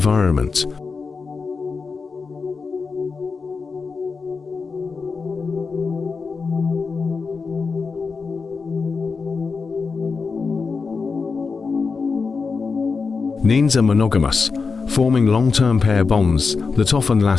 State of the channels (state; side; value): quieter; right; 4.8 dB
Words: Nenes are monogamous, forming long-term pair bonds that often